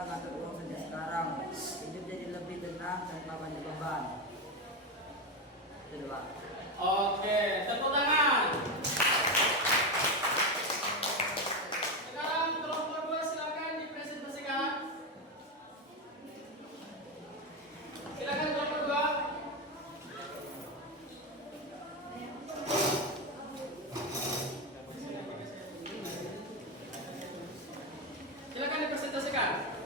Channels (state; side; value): normal; both; correlation 0.13